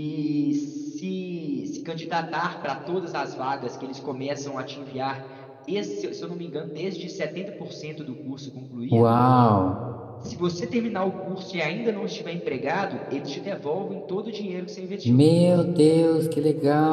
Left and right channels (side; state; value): both; identical; correlation 1.00